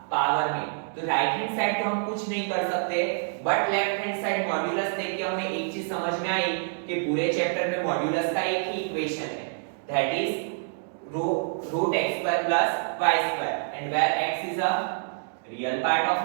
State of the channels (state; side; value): silent; left; digital silence